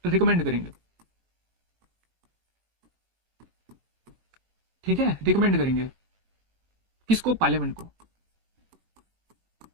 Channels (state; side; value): late; left; 18 ms